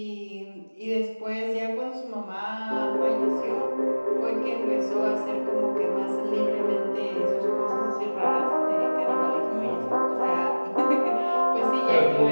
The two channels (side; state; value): both; inverted; correlation -1.00